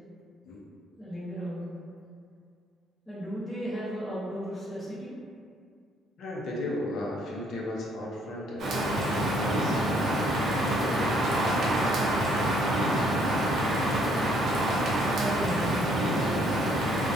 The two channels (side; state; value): both; normal; correlation 0.66